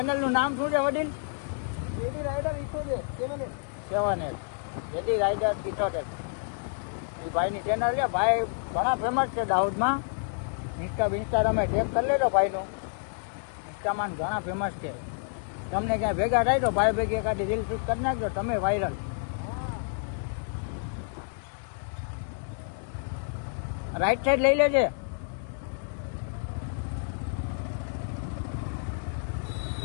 નામ શું છે વડીલ? 7L JD rider 78. એ ભાઈની ચેનલ છે. ભાઈ ઘણા ફેમસ છે દાહોદમાં. ઇન્સ્ટા તમે ટેગ કરી લેજો ભાઈનું. ઇન્સ્ટામાં ઘણા ફેમસ છે. તમને ક્યાંય ભેગા થાય તો ભાઈ ભેગી એકાદી રીલ શૂટ કરી નાખજો, તમે વાયરલ. રાઈટ સાઈડ લઈ લેજે.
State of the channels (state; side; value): silent; right; digital silence